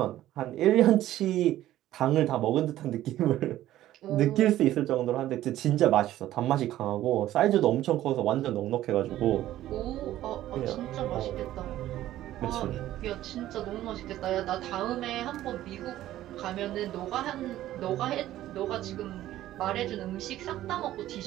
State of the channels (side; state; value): left; quieter; 13.8 dB